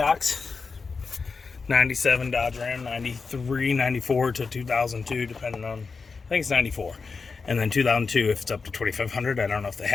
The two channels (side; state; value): right; quieter; 4.7 dB